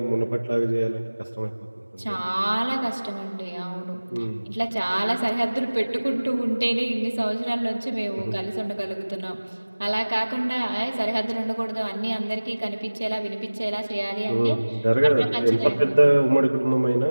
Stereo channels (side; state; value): both; inverted; correlation -1.00